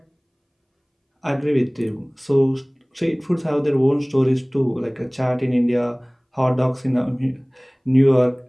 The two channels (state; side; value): identical; both; correlation 1.00